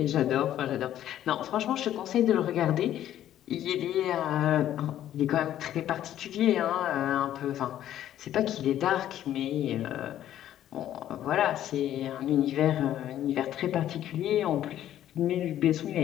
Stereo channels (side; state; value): right; quieter; 11.8 dB